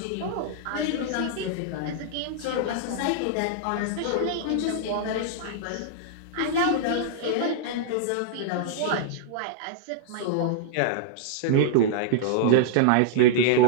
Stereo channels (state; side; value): different; both; correlation -0.01